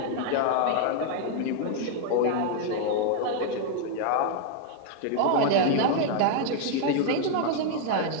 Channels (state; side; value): different; both; correlation 0.00